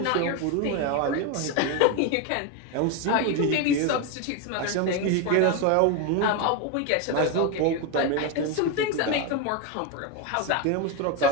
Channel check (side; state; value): both; different; correlation 0.02